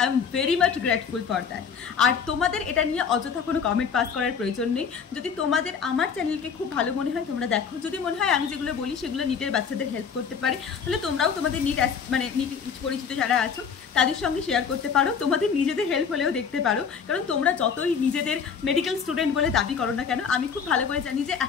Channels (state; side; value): quieter; right; 6.5 dB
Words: I am very much grateful for that. আর তোমাদের এটা নিয়ে অযথা কোনো কমেন্ট পাস করার প্রয়োজন নেই। নেই। যদি তোমাদের আমার চ্যানেলকে খুব ভালো মনে হয় তোমরা দেখো, যদি মনে হয় আমি যেগুলো বলি সেগুলো নিটের বাচ্চাদের হেল্প করতে পারে, তাহলে তোমরাও তোমাদের নিট মানে নিট পরিচিত যারা আছো তাদের সঙ্গে শেয়ার করতে পারো, তোমাদের নিজেদের হেল্প হলেও দেখতে পারো। কারণ তোমরা যতই নিজেদের মেডিকেল স্টুডেন্ট বলে দাবি করো না কেন, আমি খুব ভালো করে জানি যে